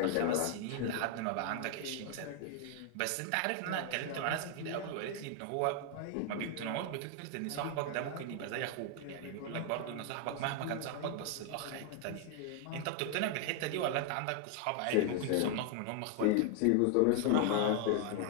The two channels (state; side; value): different; both; correlation 0.00